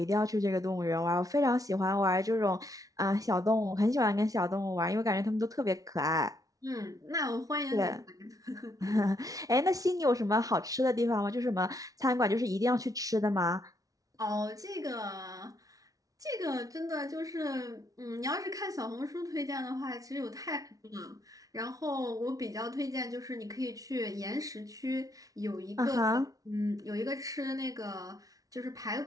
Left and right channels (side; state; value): left; late; 0.18 ms